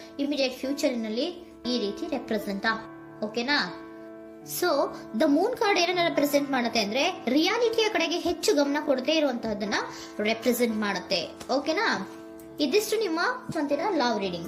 ಇಮಿಡಿಯೇಟ್ ಫ್ಯೂಚರಿನಲ್ಲಿ ಈ ರೀತಿ ರೆಪ್ರೆಸೆಂಟ್ ಓಕೆನಾ? ಸೊ ದ ಮೂನ್ ಕಾರ್ಡ್ ಏನನ್ನ ರೆಪ್ರೆಸೆಂಟ್ ಮಾಡುತ್ತೆ ಅಂದ್ರೆ, ರಿಯಾಲಿಟಿಯ ಕಡೆಗೆ ಹೆಚ್ಚು ಗಮನ ಕೊಡದೇ ಇರುವಂತಹದನ್ನ ರೆಪ್ರೆಸೆಂಟ್ ಮಾಡುತ್ತೆ. ಓಕೆನಾ? ಇದಿಷ್ಟು ನಿಮ್ಮ ಸ್ವಂತಿನ love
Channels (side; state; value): both; identical; correlation 1.00